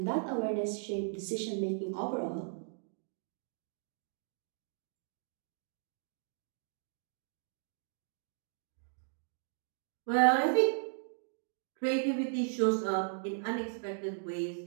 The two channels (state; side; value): silent; left; digital silence